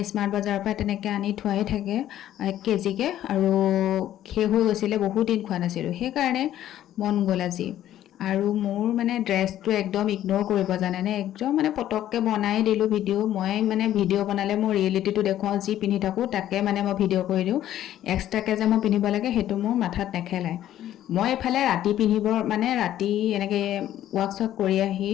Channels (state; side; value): quieter; right; 12.2 dB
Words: স্মাৰ্ট বজাৰৰ পৰা তেনেকৈ আনি থোৱাই থাকে 1 কেজিকৈ আৰু শেষ হৈ গৈছিলে বহুত দিন খোৱা নাছিলোঁ সেইকাৰণে মন গ'ল আজি আৰু মোৰ মানে ড্ৰেছটো একদম ইগন'ৰ কৰিব জানেনে একদম মানে পটককৈ বনাই দিলোঁ ভিডিঅ' মই মানে ভিডিঅ' বনালে মই ৰিয়েলিটিটো দেখুৱাওঁ যি পিন্ধি থাকোঁ তাকে মানে মই ভিডিঅ' কৰি দিওঁ এক্সট্ৰাকৈ যে মই পিন্ধিব লাগে সেইটো মোৰ মাথাত নেখেলায় মই এইফালে ৰাতি পিন্ধিব মানে ৰাতি এনেকৈ ৱাৰ্কশ্বপ কৰি আহি